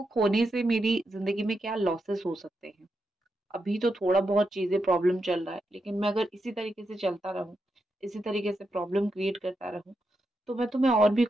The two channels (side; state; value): both; normal; correlation 0.85